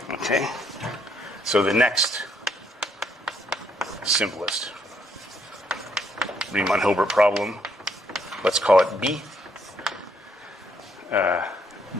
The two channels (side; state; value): both; normal; correlation 0.71